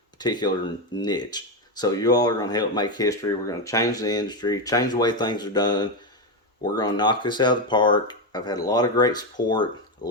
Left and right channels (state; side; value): normal; both; correlation 0.10